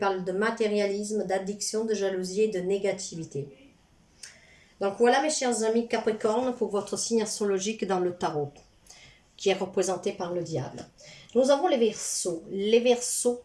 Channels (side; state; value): both; identical; correlation 1.00